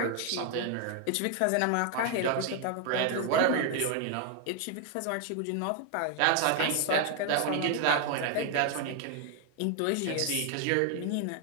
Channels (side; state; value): both; different; correlation 0.01